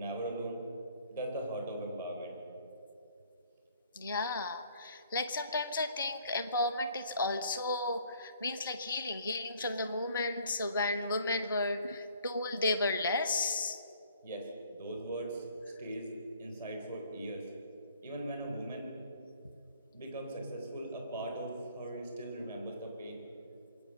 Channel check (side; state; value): both; inverted; correlation -0.58